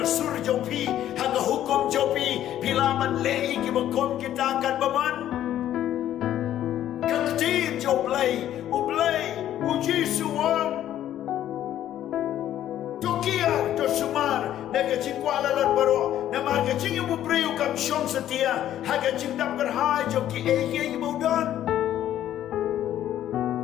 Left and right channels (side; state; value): right; quieter; 11.9 dB